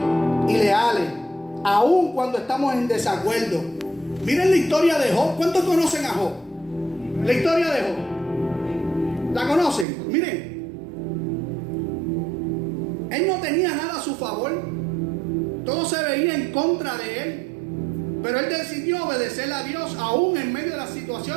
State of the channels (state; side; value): drops out; left; at 9.9 s